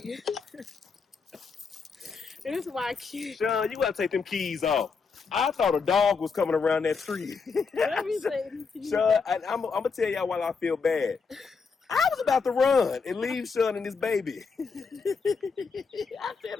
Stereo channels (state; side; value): quieter; right; 5.1 dB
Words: It is my kid. Sean, you gotta take them keys off. I thought a dog was coming around that tree. Let me say this to you. Sean, I'm gonna tell y'all why I feel bad. I was about to run and leave Sean and his baby. I said,